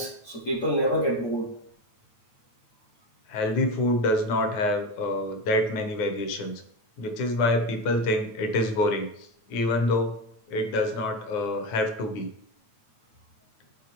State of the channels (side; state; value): right; late; 9.2 ms